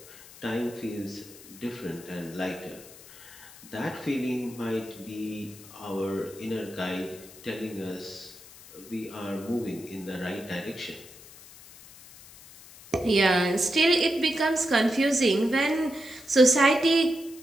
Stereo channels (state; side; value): noise; left; hiss, 19 dB below the sound